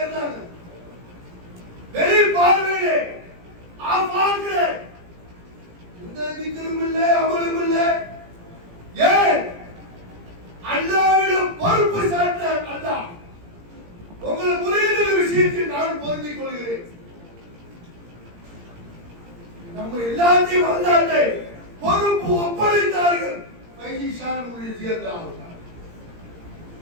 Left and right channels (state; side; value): late; left; 17 ms